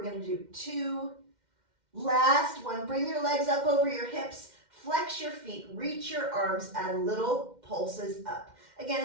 gonna do 2. Last one, bring your legs up over your hips. Flex your feet, reach your arms, add little pulses up.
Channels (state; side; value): late; left; 2.1 ms